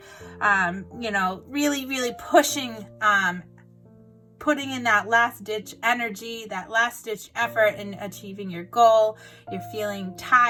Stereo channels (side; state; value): both; identical; correlation 1.00